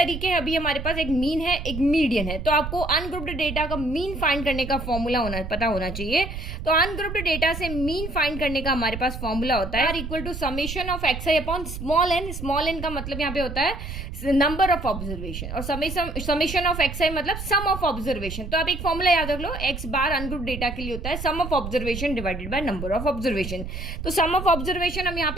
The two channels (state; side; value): noise; right; rumble, 7 dB below the sound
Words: हैं अभी हमारे पास, एक मीन है एक मीडियन है। तो आपको अनग्रुप्ड डेटा का मीन फाइंड करने का फॉर्मूला पता होना चाहिए। तो अनग्रुप्ड डेटा से मीन फाइंड करने का हमारे पास फॉर्मूला होता है equal to summation of x i upon small n. Small n का मतलब यहाँ पे होता है नंबर ऑफ ऑब्जर्वेशन, और समेशन ऑफ एक्स आई मतलब सम ऑफ ऑब्जर्वेशन। तो आप एक फॉर्मूला याद रख लो, एक्स बार अनग्रुप्ड डेटा के लिए होता है sum of observation divided by number of observation. तो सम ऑफ ऑब्जर्वेशन हम यहाँ